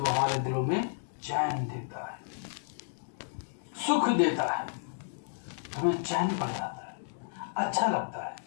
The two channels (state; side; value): silent; right; digital silence